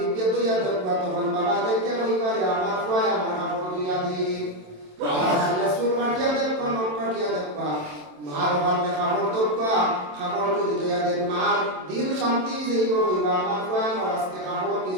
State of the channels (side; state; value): left; late; 27 ms